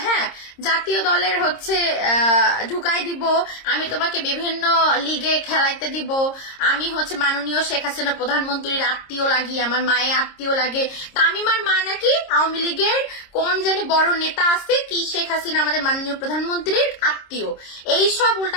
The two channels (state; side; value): late; right; 26 ms